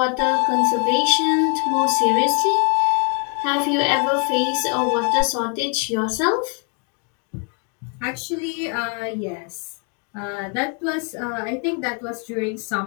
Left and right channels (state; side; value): quieter; right; 38.7 dB